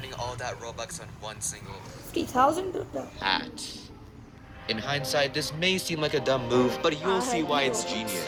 all that Robux on one single 50,000? hat. In hindsight, this may seem like a dumb move, but you'll see why it's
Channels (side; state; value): both; identical; correlation 1.00